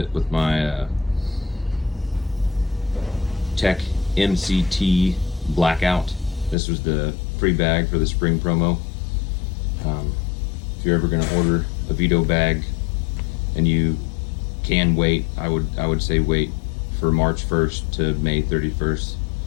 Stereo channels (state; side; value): drops out; right; at 6.6 s